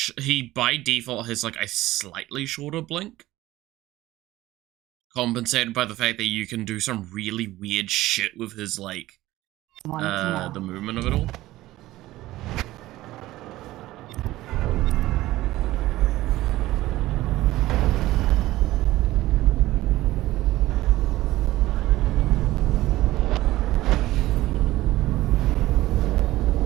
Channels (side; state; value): left; quieter; 16.6 dB